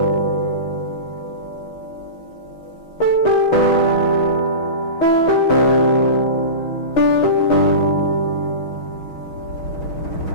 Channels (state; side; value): late; right; 6.3 ms